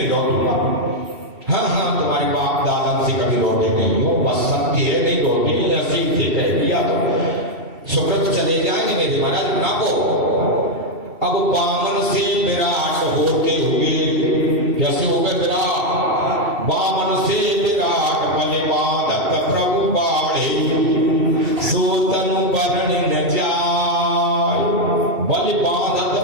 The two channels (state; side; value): late; left; 2.7 ms